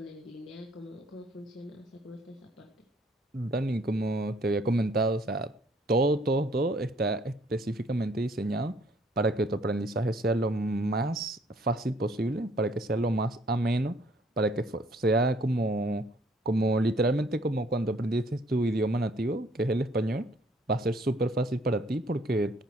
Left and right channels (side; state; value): both; normal; correlation 0.62